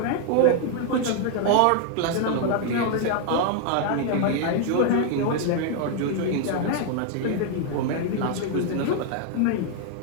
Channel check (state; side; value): different; both; correlation 0.00